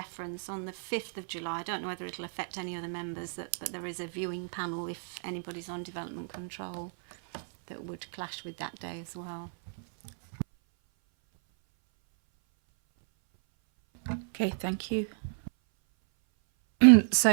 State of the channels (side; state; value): left; silent; 57 dB below the other